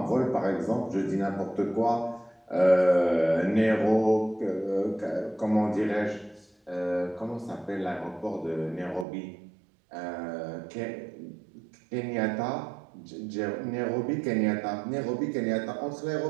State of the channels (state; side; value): drops out; left; at 9.1 s